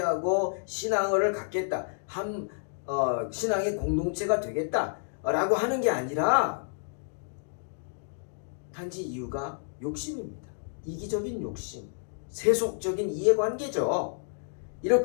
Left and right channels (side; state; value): right; silent; digital silence